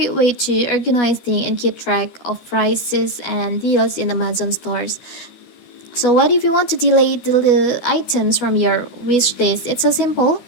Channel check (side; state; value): right; late; 12 ms